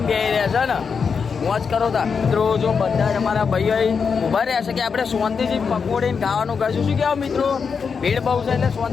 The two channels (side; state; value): right; quieter; 5.8 dB